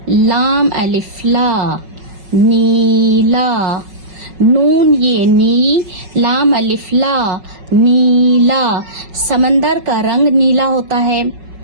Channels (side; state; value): left; late; 5.4 ms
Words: लाम अलिफ ला नीला, नून ये नी, लाम अलिफ ला नीला। समंदर का रंग नीला होता है।